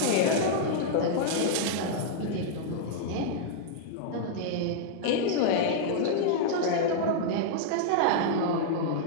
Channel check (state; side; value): different; both; correlation -0.02